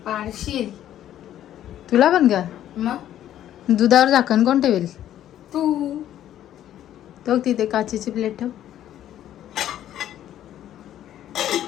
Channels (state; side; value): quieter; right; 11.7 dB